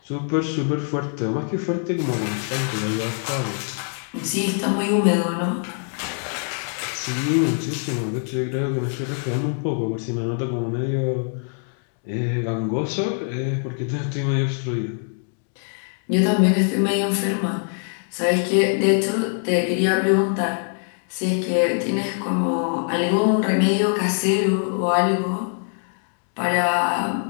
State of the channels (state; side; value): silent; right; 59 dB below the other